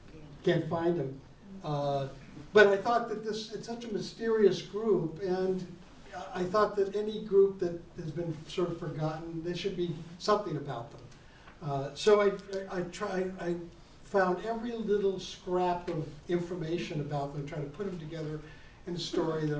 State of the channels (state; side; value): identical; both; correlation 1.00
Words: Can't find them. But I thought that it's such a mysterious group, and I thought that any group that has been sort of forgotten, there should be something about them. So I found every little scrap of information about them, trying to put them together in a story that